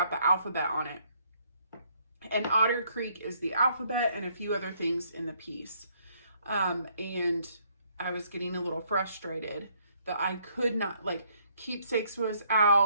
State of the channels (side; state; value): both; inverted; correlation -0.68